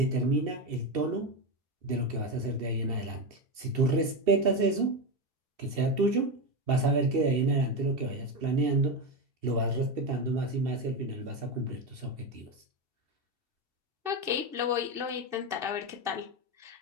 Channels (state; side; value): late; left; 2.7 ms